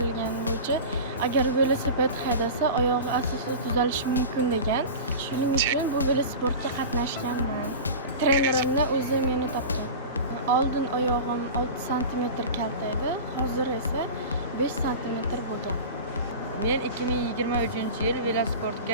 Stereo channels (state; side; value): inverted; both; correlation -0.31